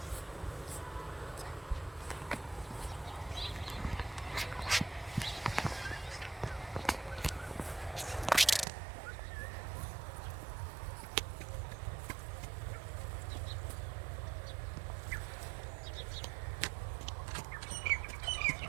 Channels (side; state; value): left; drops out; at 8.7 s